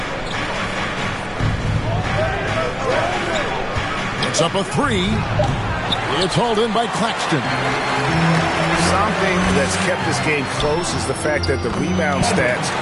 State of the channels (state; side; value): identical; both; correlation 1.00